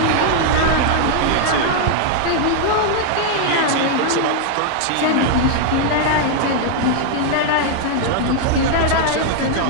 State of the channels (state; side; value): different; both; correlation 0.00